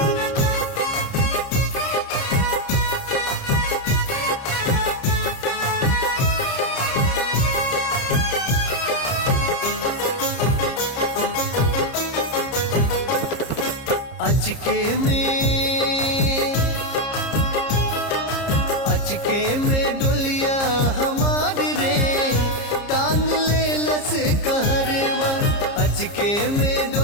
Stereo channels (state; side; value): late; right; 30 ms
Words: अचके में डोलिया हमार रे टांग ले लस कहरवा। अचके में